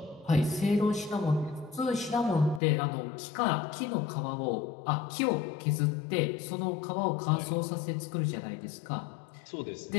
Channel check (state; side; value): drops out; right; at 2.6 s